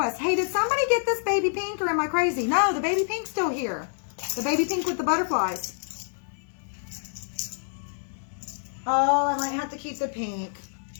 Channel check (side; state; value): right; silent; 60 dB below the other